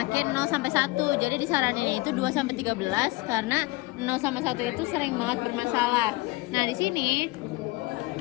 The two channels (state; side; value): quieter; right; 22.2 dB